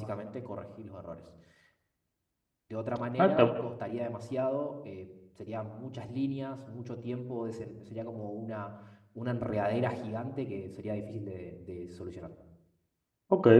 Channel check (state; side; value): identical; both; correlation 1.00